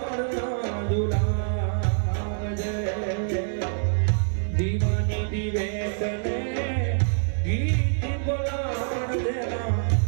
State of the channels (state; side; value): silent; left; digital silence